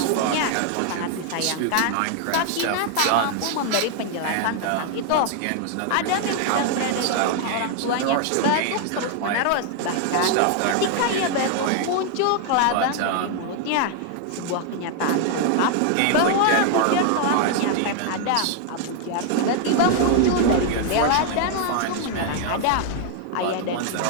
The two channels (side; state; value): both; different; correlation 0.00